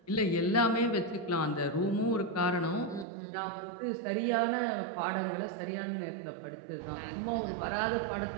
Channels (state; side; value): drops out; left; at 3.1 s